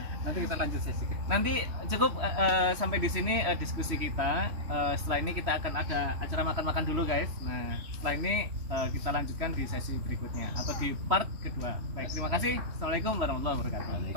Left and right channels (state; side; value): late; left; 3.1 ms